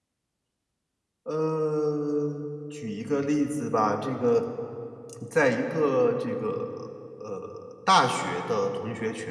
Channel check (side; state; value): both; identical; correlation 1.00